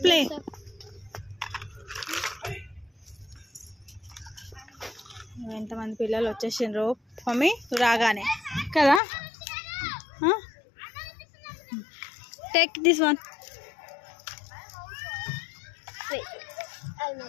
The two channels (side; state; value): right; drops out; at 9.0 s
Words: play. ఎంతమంది పిల్లలు వచ్చేసిండ్రు మమ్మీ రాగానే కదా. Take this one.